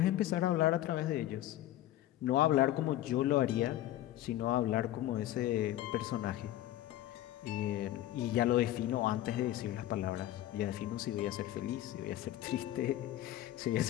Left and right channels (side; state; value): right; quieter; 13.9 dB